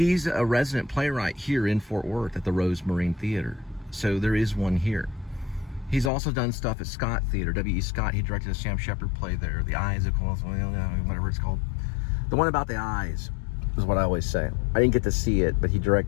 a resident playwright here in Fort Worth at the Rose Marine Theater. So there is one here. He's also done stuff at Scott Theater, W.E. Scott. He directed a Sam Shepard play there, The Eyes of Cole, whatever it's called. The one about the eyes is what I always say. I didn't get to see it, but he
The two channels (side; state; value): right; drops out; at 6.1 s